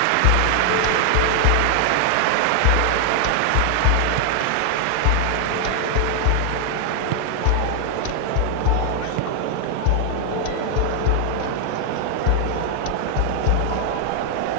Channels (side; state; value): both; different; correlation 0.00